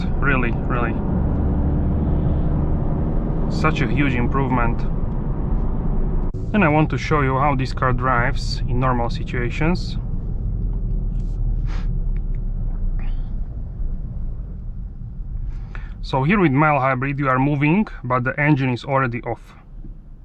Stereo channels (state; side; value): identical; both; correlation 1.00